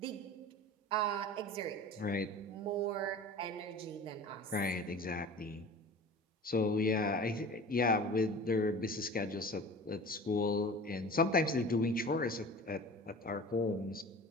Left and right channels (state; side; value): normal; both; correlation 0.39